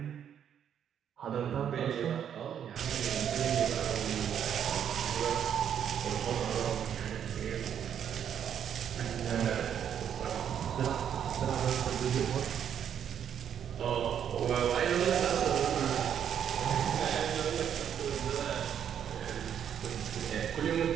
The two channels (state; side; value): quieter; left; 8.9 dB